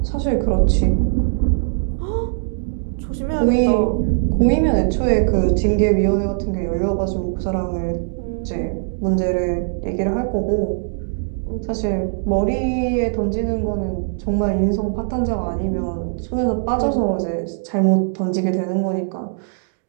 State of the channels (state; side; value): silent; left; digital silence